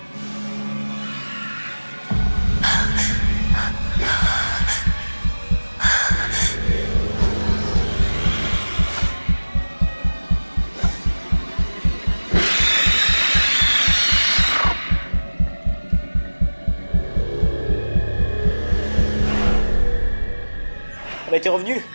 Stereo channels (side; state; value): both; inverted; correlation -1.00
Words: Elle a été revenue.